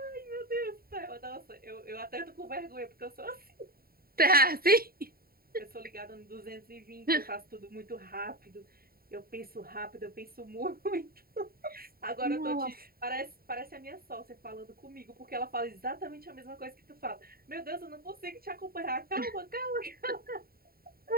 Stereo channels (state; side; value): late; left; 0.43 ms